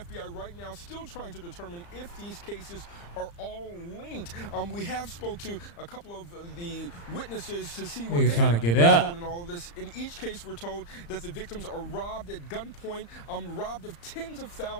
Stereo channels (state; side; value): late; right; 35 ms